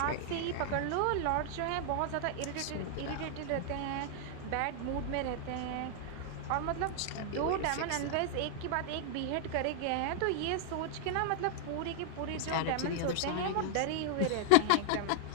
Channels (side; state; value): both; different; correlation 0.00